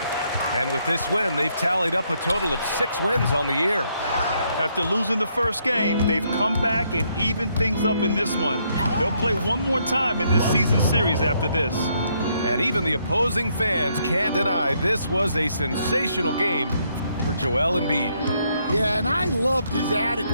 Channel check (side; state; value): both; inverted; correlation -0.73